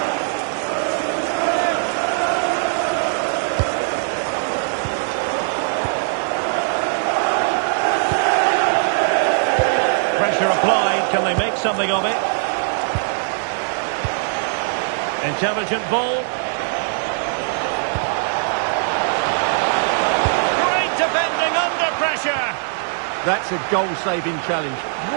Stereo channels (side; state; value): left; silent; digital silence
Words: Pressure applied. Can they make something of it? Intelligent ball. Great defending under pressure. That's a goal-saving challenge.